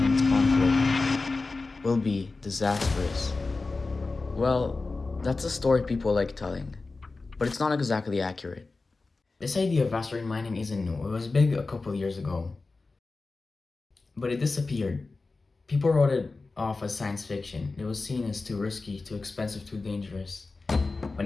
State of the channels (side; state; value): right; quieter; 3.7 dB